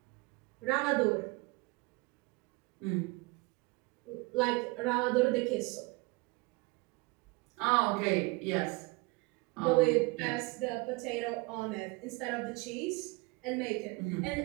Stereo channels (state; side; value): quieter; left; 24.9 dB